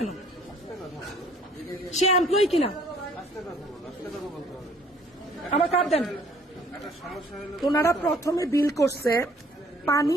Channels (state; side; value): normal; both; correlation 0.59